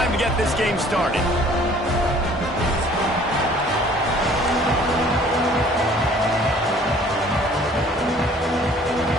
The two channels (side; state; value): both; normal; correlation 0.54